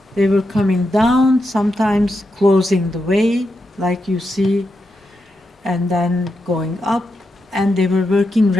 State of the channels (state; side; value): normal; both; correlation 0.86